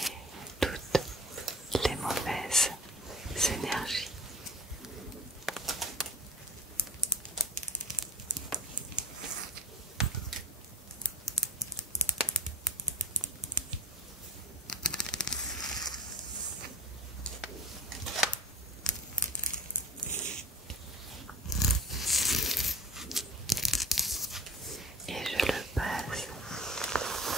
toutes les mauvaises énergies. Et je le passe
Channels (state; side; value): normal; both; correlation 0.36